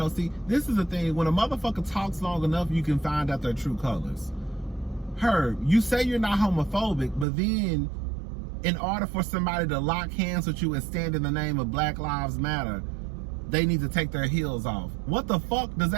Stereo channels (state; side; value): drops out; left; at 7.2 s